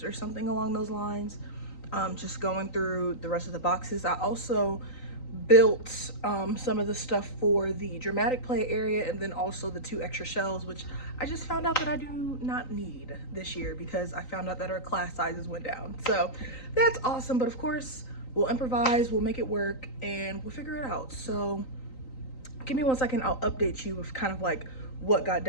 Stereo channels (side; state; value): right; late; 3.9 ms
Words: or something along those lines, just going through the rest of the boxes. I also built some of the stuff for the dramatic play area, and then also the 2 extra shelves, which I just found out that I do not need this year because I found out that our class sizes went down. So that's awesome, but of course we'll improvise, we'll make it work, and we'll figure it out. So give me 1 second, I'll update you with kind of like what got